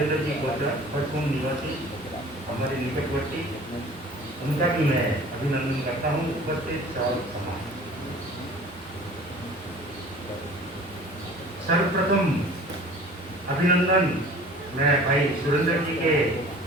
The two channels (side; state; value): both; normal; correlation 0.45